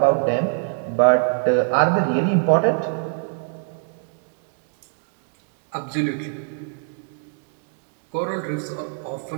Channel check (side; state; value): left; silent; digital silence